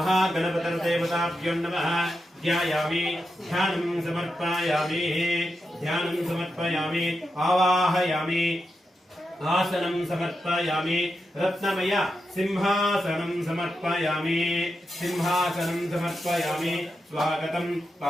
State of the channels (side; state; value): both; normal; correlation 0.87